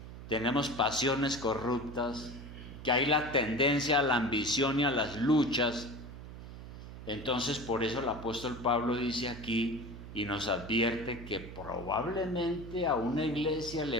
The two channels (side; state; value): right; noise; hum, 12 dB below the sound